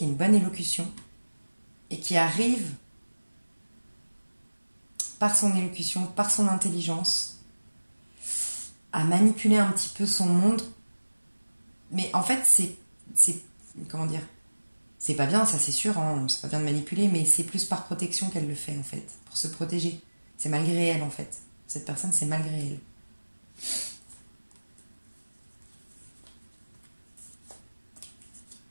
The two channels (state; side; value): inverted; both; correlation -1.00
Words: a une bonne élocution et qui arrive par son élocution, par son intelligence, à manipuler un petit peu son monde. Mais en fait, c'est comment dire, c'est pas bien, ça c'est sûr, hein, c'est pas bien de manipuler, mais c'est plus par protection qu'elle le fait, en fait, pour se protéger. C'est malgré elle, en fait. Cette personne, c'est malgré elle.